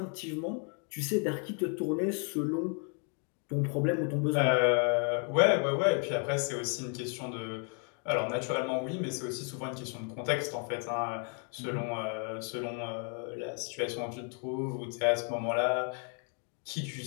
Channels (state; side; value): quieter; right; 39.3 dB